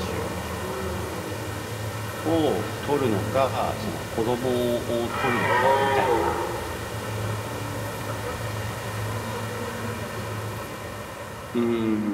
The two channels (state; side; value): identical; both; correlation 1.00